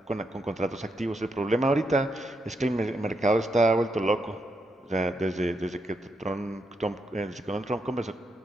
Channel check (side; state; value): both; normal; correlation 0.81